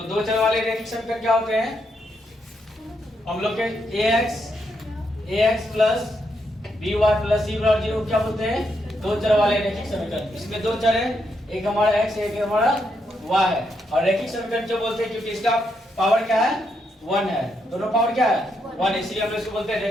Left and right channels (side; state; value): both; normal; correlation 0.79